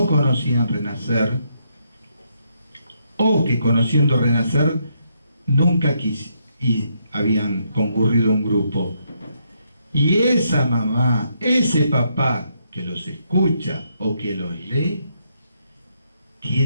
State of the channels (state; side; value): inverted; both; correlation -0.76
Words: conocían Renacer, o que conociendo Renacer nunca y habían concurrido a un grupo. Y esa mamá, ese papá que los escucha o que los lee,